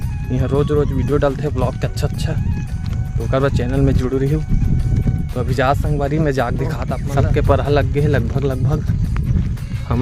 यहाँ रोज़ वीडियो डालते हैं ब्लॉग के अच्छा। तो कर चैनल में जुड़ रही हूँ। तो अभी जा संगवारी में जाग दिखाता सबके परहा लग गए लगभग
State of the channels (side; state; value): both; identical; correlation 1.00